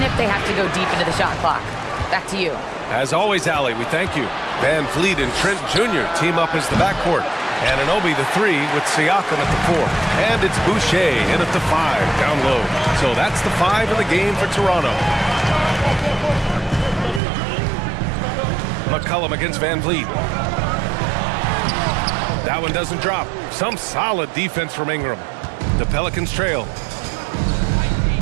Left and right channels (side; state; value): left; drops out; at 17.2 s